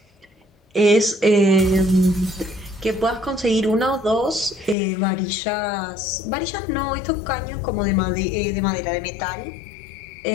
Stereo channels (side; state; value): right; drops out; at 4.8 s